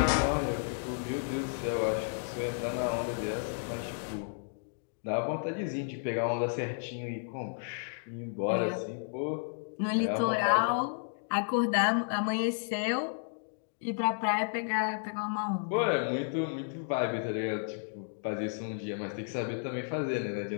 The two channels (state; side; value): silent; right; digital silence